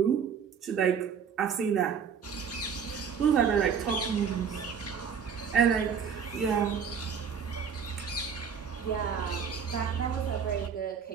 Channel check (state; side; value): quieter; left; 6.9 dB